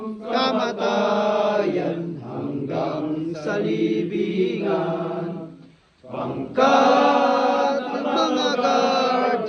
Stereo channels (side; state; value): both; identical; correlation 1.00